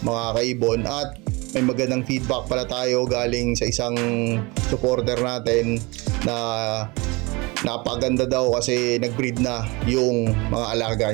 mga kaibon, at may magandang feedback pala tayo galing sa isang supporter natin na napaganda daw kasi nag-breed na yung mga alaga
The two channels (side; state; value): left; quieter; 25.6 dB